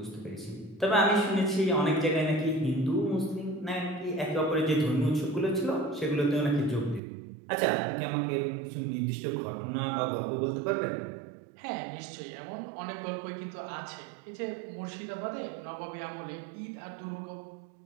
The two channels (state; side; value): drops out; left; at 7.0 s